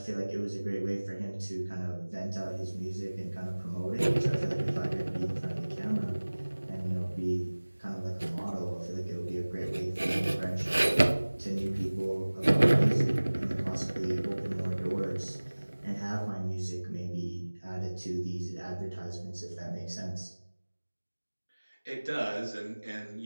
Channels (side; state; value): both; inverted; correlation -1.00